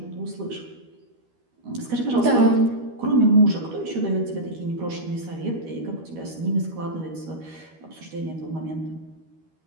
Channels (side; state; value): left; late; 13 ms